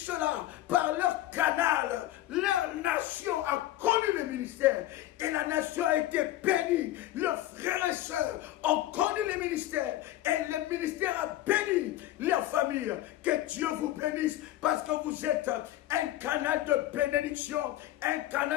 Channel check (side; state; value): right; quieter; 14.5 dB